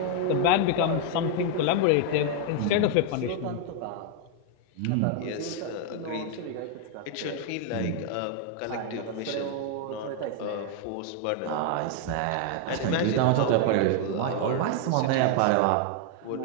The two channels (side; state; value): both; different; correlation 0.00